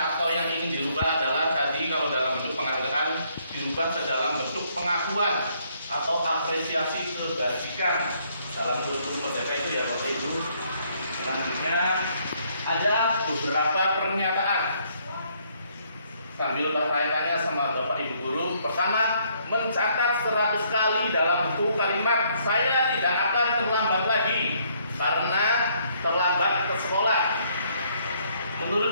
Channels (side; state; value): both; inverted; correlation -0.68